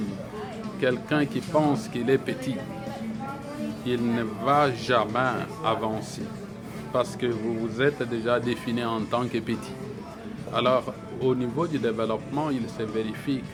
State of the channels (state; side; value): identical; both; correlation 1.00